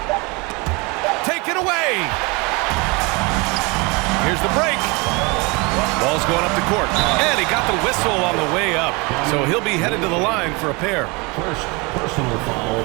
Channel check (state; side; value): quieter; left; 27.6 dB